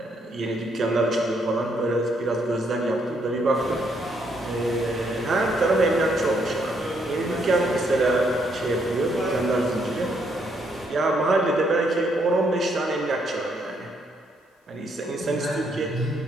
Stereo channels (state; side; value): normal; both; correlation 0.73